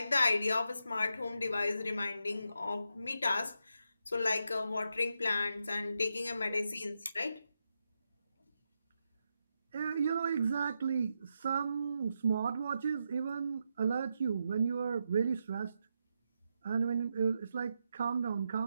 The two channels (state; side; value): inverted; both; correlation -0.85